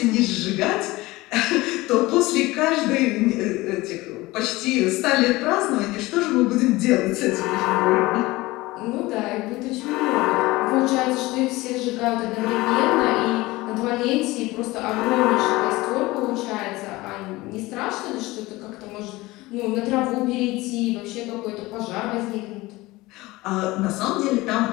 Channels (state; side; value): quieter; right; 20.2 dB